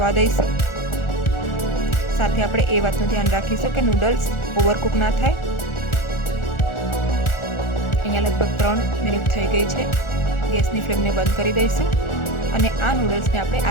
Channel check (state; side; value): late; right; 1.4 ms